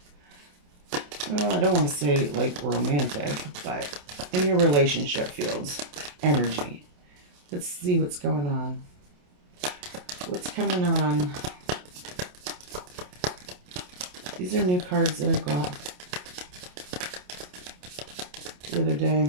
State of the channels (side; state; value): left; late; 28 ms